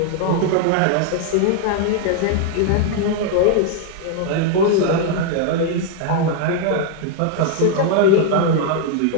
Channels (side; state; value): both; different; correlation 0.00